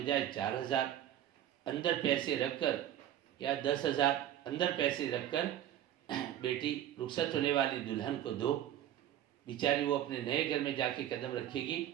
4000 اندر پیسے رکھ کر، یا 10,000 اندر پیسے رکھ کر بیٹی رخصت ہونے والی دلہن کو دو، بیچاری وہ اپنے نئے گھر میں جا کے قدم رکھے گی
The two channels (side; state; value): left; quieter; 11.6 dB